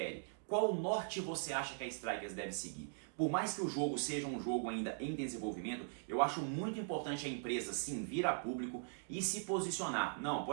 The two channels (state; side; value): silent; left; digital silence